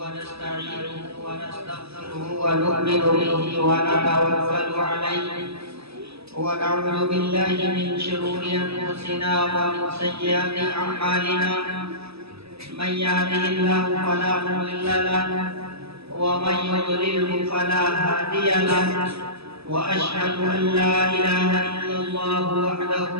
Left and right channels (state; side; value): late; left; 0.78 ms